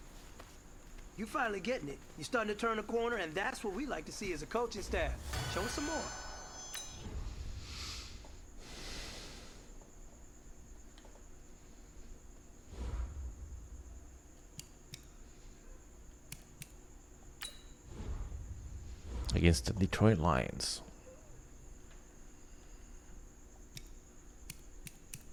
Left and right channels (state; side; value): identical; both; correlation 1.00